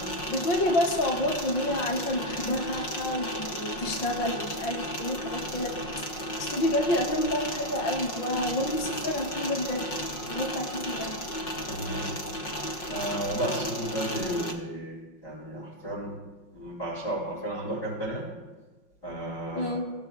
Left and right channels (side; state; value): right; late; 5.5 ms